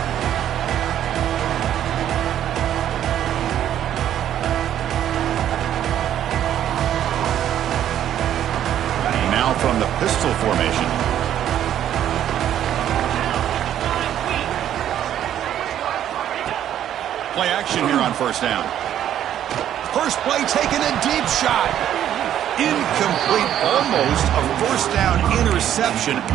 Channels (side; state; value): left; quieter; 10.8 dB